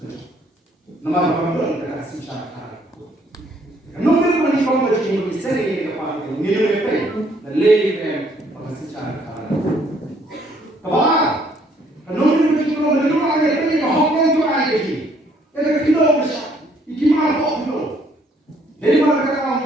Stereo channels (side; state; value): both; normal; correlation 0.65